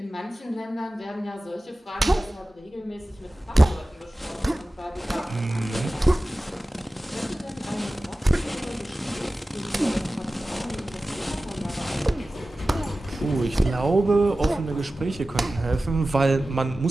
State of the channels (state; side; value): normal; both; correlation 0.96